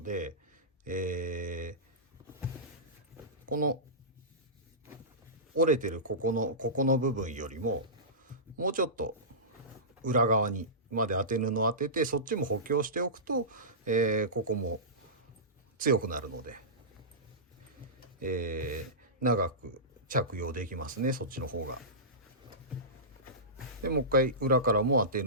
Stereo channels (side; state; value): both; normal; correlation -0.19